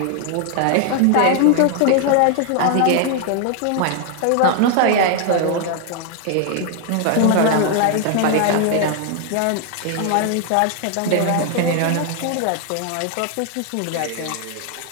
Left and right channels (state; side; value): different; both; correlation 0.00